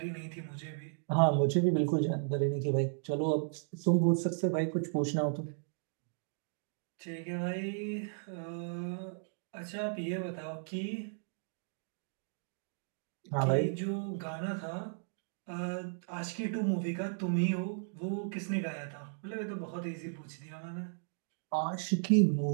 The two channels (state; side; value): silent; left; digital silence